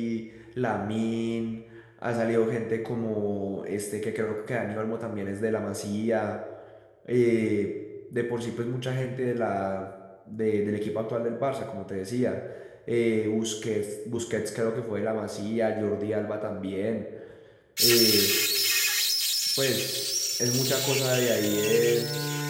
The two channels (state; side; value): identical; both; correlation 1.00